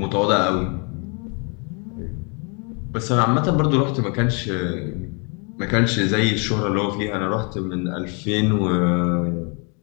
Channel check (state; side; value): quieter; right; 35.3 dB